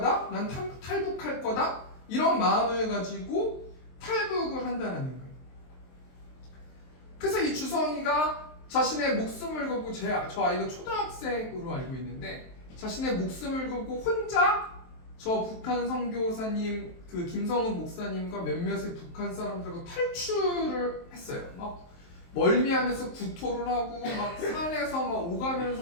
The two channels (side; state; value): right; late; 23 ms